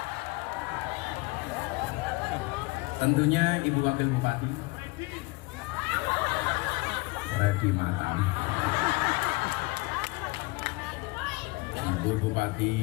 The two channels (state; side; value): quieter; right; 24.6 dB